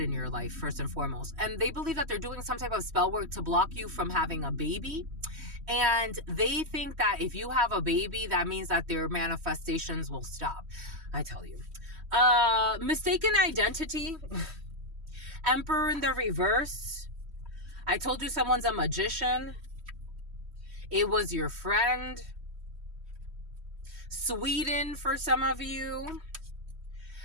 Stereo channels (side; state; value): left; late; 3.1 ms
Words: in your life, first and foremost. And they believe that they're doing some type of spell work to block you from having a baby. And they think that if you have a baby, that means that their manifestations will stop. I tell you. Mistaken identity. Emperor in the reverse. I told you someone's a magician. It was your friend. Sweden for some of you.